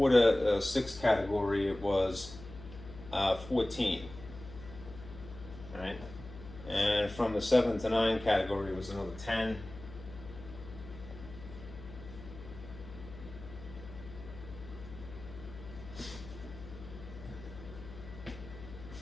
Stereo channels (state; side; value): noise; left; hum, 14 dB below the sound